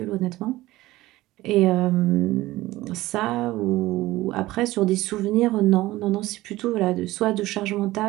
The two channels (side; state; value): left; quieter; 17.5 dB